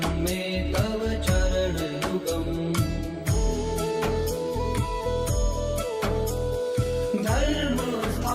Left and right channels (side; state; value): both; identical; correlation 1.00